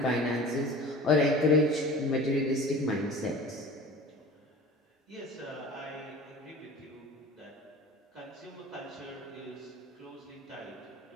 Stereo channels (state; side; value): normal; both; correlation 0.39